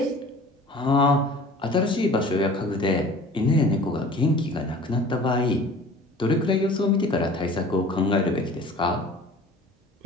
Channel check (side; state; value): both; normal; correlation 0.45